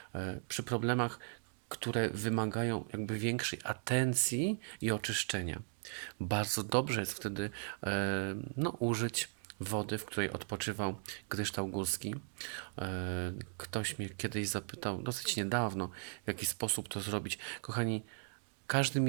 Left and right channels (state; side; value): silent; left; digital silence